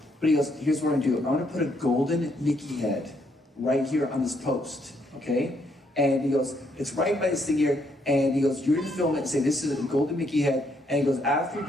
But he goes, here's what I'm gonna do. I'm gonna put a golden Mickey head right here on this post, okay? And he goes, it's right by this thing here. And he goes, you're gonna film it and say, this is a golden Mickey head. And he goes, after you're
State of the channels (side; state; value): both; normal; correlation 0.73